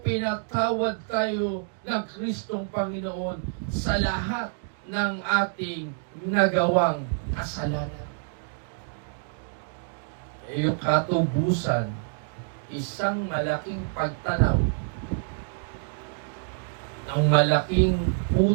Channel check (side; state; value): left; silent; digital silence